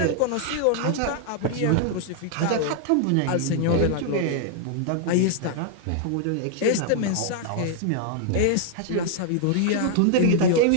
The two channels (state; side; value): different; both; correlation 0.00